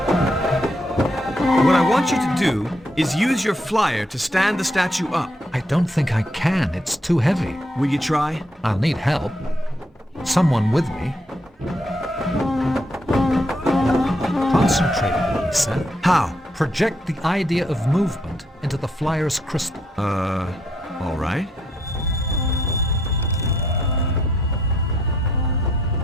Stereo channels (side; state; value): both; normal; correlation 0.74